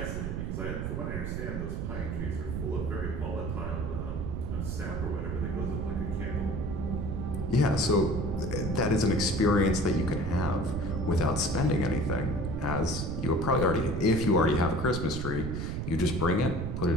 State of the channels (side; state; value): right; noise; rumble, 3 dB below the sound